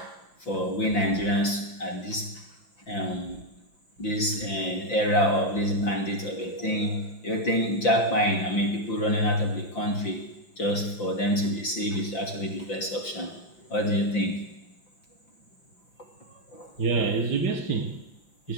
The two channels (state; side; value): late; right; 5.9 ms